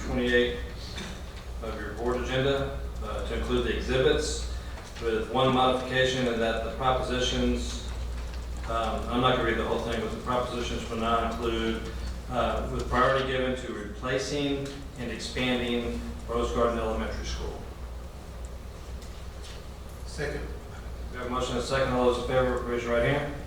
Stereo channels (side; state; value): both; identical; correlation 1.00